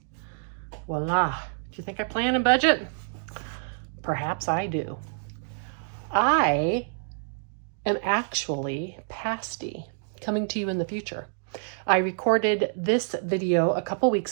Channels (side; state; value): left; silent; digital silence